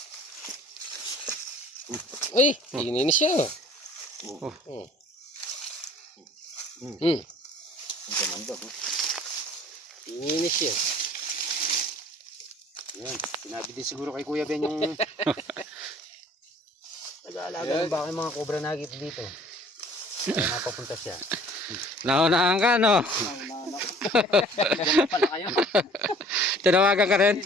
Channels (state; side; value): normal; both; correlation 0.52